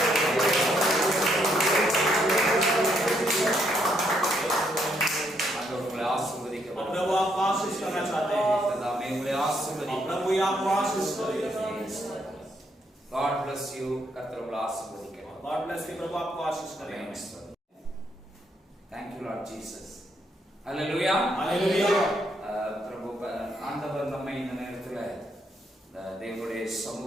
ஆண்டவர் உங்களை ஆசீர்வதிக்க और प्रभु आपको आशीष करना चाहते हैं, தாமே உங்களை और ஆசீர்வதிக்க. प्रभु ही आपको आशीष करेगा। God bless you. கர்த்தர் உங்களை ஆசீர்வதிக்க. God bless you, प्रभु आपको आशीष करेगा। Thank you Lord Jesus. Hallelujah. Hallelujah. பிரபு ஆண்டவர் நம்மை இந்த நேரத்துல தேவனுடைய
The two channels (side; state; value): both; normal; correlation 0.74